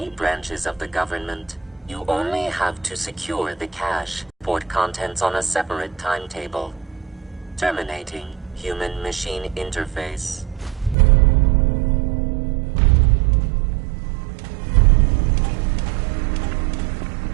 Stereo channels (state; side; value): drops out; left; at 11.0 s